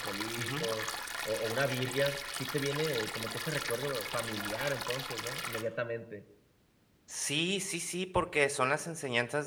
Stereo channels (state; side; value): identical; both; correlation 1.00